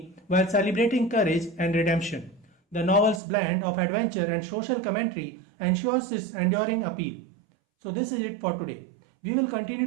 while celebrating courage and redemption. The novel's blend of adventure and social commentary ensures its enduring appeal. So this is it for today. We will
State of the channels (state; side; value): drops out; left; at 3.2 s